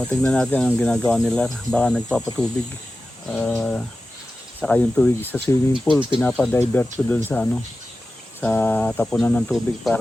Tignan natin ang ginagawa nila. Baka nagpapatubig. Saka yung tubig sa swimming pool, pinapadivert ko doon sa sa tapunan ng tubig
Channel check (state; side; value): normal; both; correlation 0.94